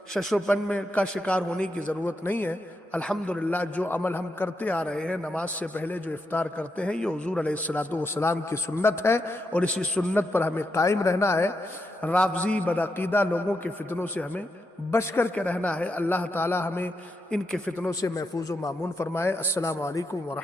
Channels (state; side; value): normal; both; correlation 0.83